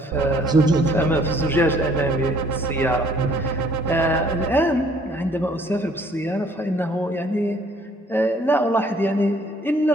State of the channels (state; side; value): normal; both; correlation 0.60